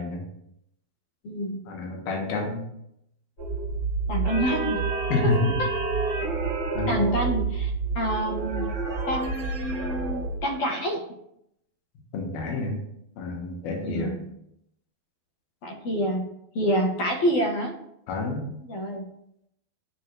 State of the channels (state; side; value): late; right; 12 ms